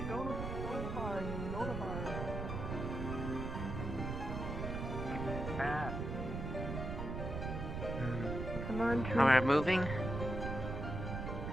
go to the bar. Go to the bar. Come on, Oh, we're moving?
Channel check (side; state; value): right; noise; rumble, 4 dB below the sound